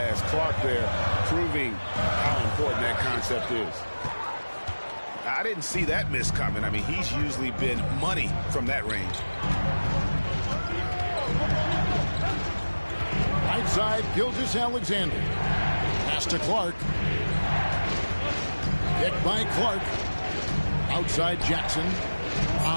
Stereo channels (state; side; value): inverted; both; correlation -1.00